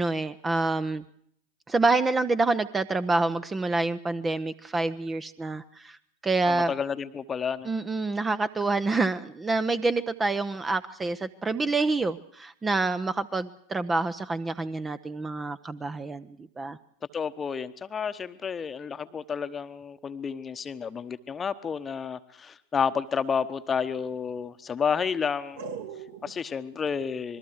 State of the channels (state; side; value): normal; both; correlation 0.83